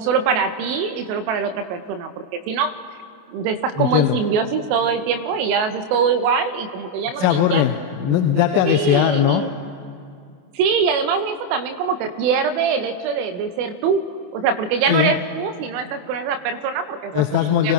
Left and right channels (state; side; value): late; left; 28 ms